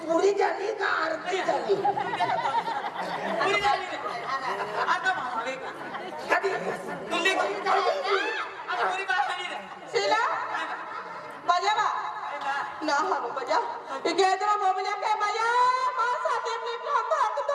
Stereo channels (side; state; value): both; identical; correlation 1.00